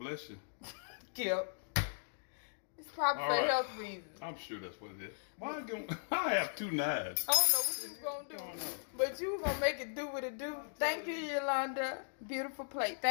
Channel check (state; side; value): silent; right; digital silence